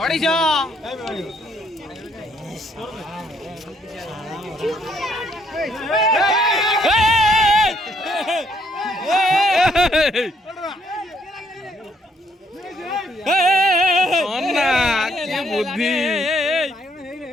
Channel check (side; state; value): both; normal; correlation 0.69